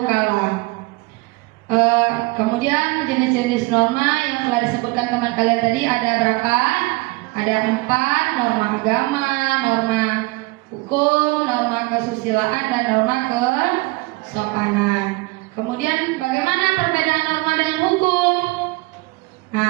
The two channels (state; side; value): quieter; left; 24.0 dB